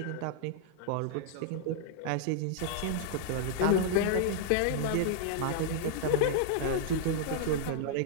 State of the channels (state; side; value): different; both; correlation -0.01